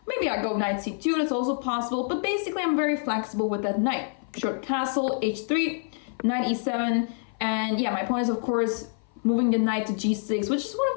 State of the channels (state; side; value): silent; right; 55 dB below the other